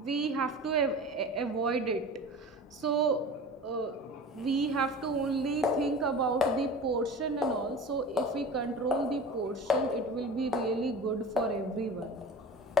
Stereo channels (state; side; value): normal; both; correlation 0.36